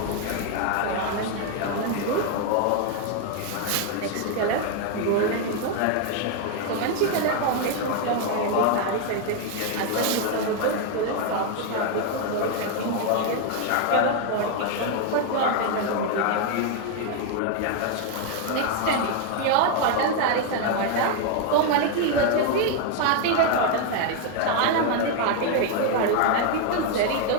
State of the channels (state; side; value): different; both; correlation 0.01